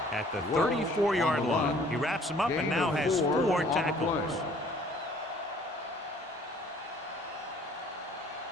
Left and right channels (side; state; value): both; normal; correlation 0.56